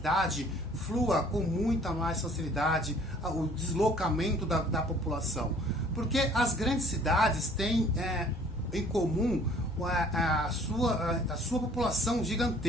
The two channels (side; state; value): both; normal; correlation 0.55